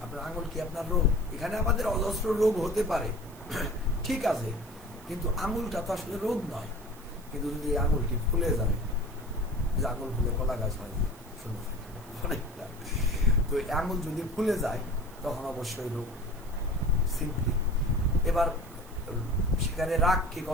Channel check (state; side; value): noise; right; hiss, 23 dB below the sound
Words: আপনার আঙুল কি আপনার রোগ? এখানে আমাদের অজস্র রোগ হতে পারে, ঠিক আছে, কিন্তু আঙুলটা তো আসলে রোগ নয়। কিন্তু যদি এই আঙুলটি ফুলে যায়, যে আঙুল ফুলে কলা গাছ হয়, শুনে থাকেন অনেকটা, তো এই আঙুল যদি ফুলে যায় তখন অবশ্যই রোগ, সিম্পলি। এবার সেখানে রাগকে